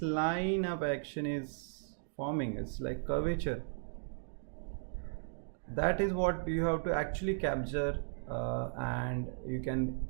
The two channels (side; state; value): left; silent; digital silence